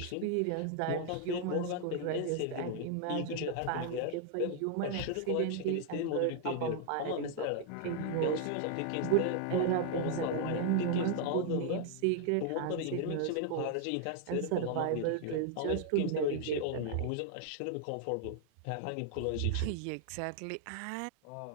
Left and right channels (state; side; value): different; both; correlation 0.00